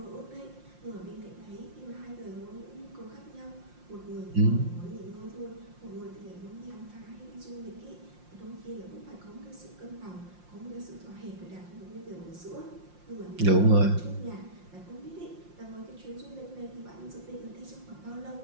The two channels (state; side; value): late; left; 5.7 ms